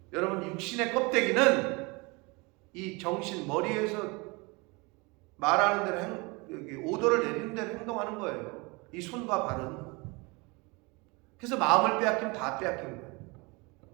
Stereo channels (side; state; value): left; quieter; 27.0 dB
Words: 여러분, 육신의 껍데기는 이 정신, 머리에서 말하는 대로 여기 오더를 내리는 대로 행동하는 거예요. 이 손과 발은. 그래서 마음을 빼앗기면 다 빼앗긴 거예요.